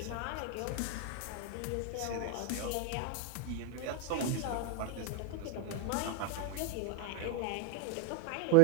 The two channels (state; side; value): different; both; correlation 0.01